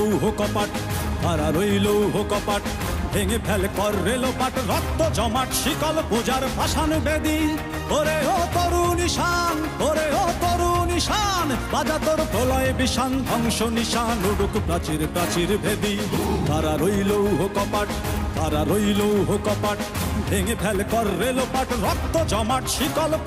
কপাট, কারা রইল কপাট, ভেঙে ফেল কর রেলোপাট, রক্ত জমাট শিকল পূজার পাষাণ বেদী। ওরে ও তরুণ ঈশান, ওরে ও তরুণ ঈশান, বাজা তোর প্রলয় বিষান, ধ্বংস নিশান উড়ুক প্রাচীর প্রাচীর ভেদী। কারা রইল কপাট, কারা রইল কপাট, ভেঙে ফেল কর রেলোপাট, রক্ত জমাট শিকল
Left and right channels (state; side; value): identical; both; correlation 1.00